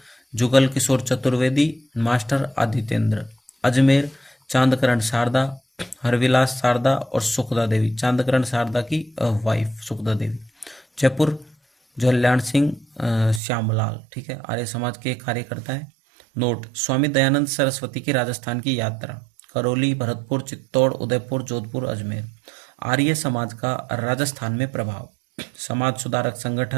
जुगल किशोर चतुर्वेदी, मास्टर आदित्येंद्र, अजमेर चांदकरण शारदा, हरविलास शारदा और सुखदा देवी, चांदकरण शारदा की वाइफ सुखदा देवी, जयपुर जल्याण सिंह श्यामलाल। ठीक है, आर्य समाज के कार्यकर्ता है। नोट, स्वामी दयानंद सरस्वती की राजस्थान की यात्रा, करौली, भरतपुर, चित्तौड़, उदयपुर, जोधपुर, अजमेर। आर्य समाज का राजस्थान में प्रभाव, समाज सुधारक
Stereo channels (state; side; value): drops out; left; at 13.4 s